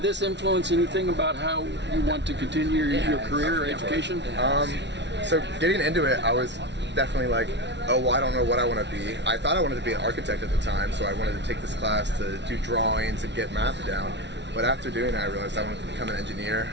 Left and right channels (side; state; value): left; late; 0.51 ms